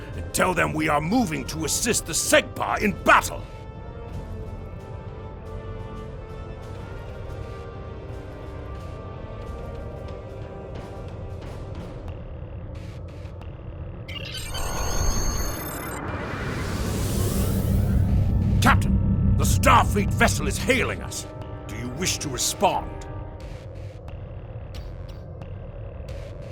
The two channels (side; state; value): both; identical; correlation 1.00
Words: and tell them we are moving to assist the Segpa in battle. Captain, the Starfleet vessel is hailing us. Do you wish to respond?